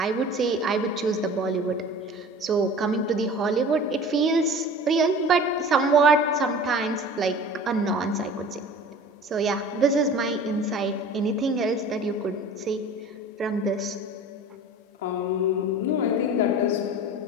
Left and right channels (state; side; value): normal; both; correlation 0.41